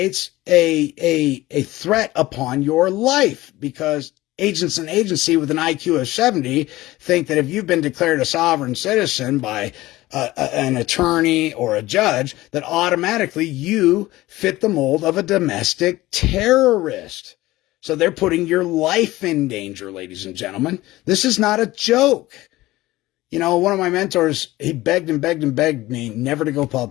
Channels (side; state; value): right; quieter; 17.9 dB